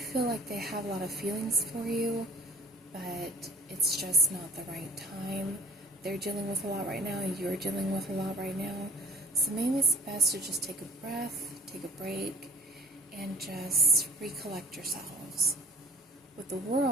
like they have a lot of feelings for you, but it's just not the right time. They're dealing with a lot right now, you're dealing with a lot right now. So maybe it's best to just take a breath, take a break, and just recollect yourselves. With the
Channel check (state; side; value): normal; both; correlation 0.48